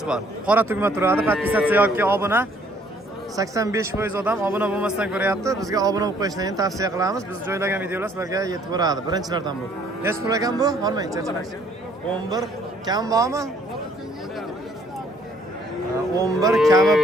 bor. Qora tugma turadi. Podpisatsiya yoki obuna 85% odam obuna bo'lmasdan ko'ryapti. Bizga obuna bo'lib qo'yishni tavsiya qilamiz. Biz joylagan videolar sizlarga yetib boradi. Birinchilardan bu. Nech pul ekan bu? Olmang, charchamak. 11 kam bormi? 11 kami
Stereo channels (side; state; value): both; normal; correlation 0.62